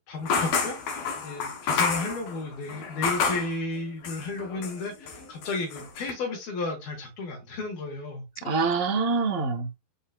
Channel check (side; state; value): right; late; 12 ms